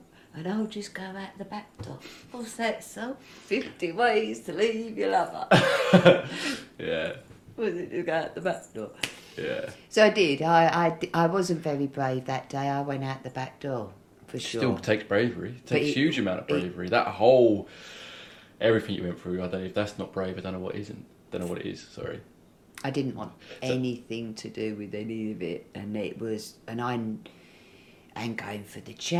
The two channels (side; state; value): both; identical; correlation 1.00